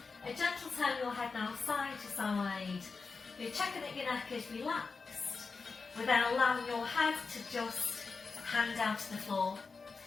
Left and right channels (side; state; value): right; quieter; 4.5 dB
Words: a gentle turn of your head now side to side. You're checking that your neck is relaxed. We're then allowing your head to just hang down to the floor.